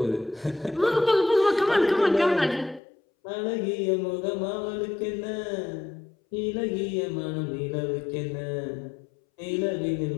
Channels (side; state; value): right; drops out; at 2.8 s